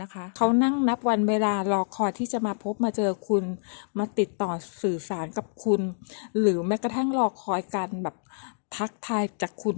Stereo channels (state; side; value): silent; right; digital silence